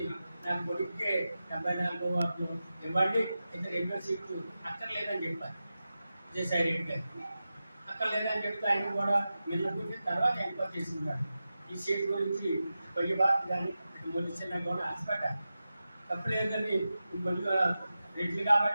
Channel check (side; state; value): both; inverted; correlation -0.93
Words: నాకు కొడుక్కే 74 వార్డులు ఇవ్వండి, ఇద్దరు 2 సీట్లు అక్కర్లేదని చెప్పారు విజయసాయి రెడ్డి గారు. అక్కర్లేదని చెప్తే ఆయన కూడా నిన్నకుంటే తర్వాత ఎంక్వైరీ చేసినాడు. ఈ సీట్ గురించి పొయ్యి బాధ కానీ మొలిచిన కూడా ఆశపడ్డారు. తప్పులేదని మళ్ళీ రెడ్లు